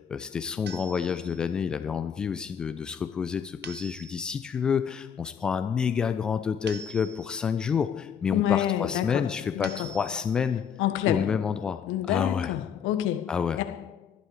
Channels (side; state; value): right; quieter; 7.4 dB